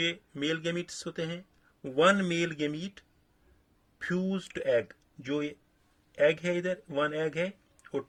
मेल गैमीट्स होते हैं, 1 मेल गैमीट फ्यूज्ड एग, जो ये एग है इधर 1 एग है और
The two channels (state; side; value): identical; both; correlation 1.00